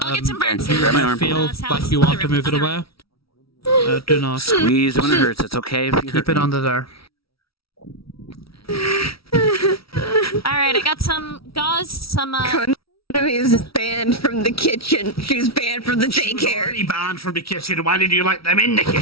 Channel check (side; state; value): right; late; 0.75 ms